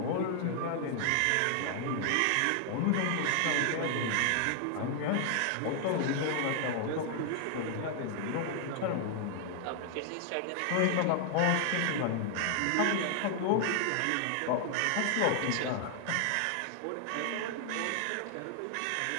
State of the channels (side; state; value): both; different; correlation 0.00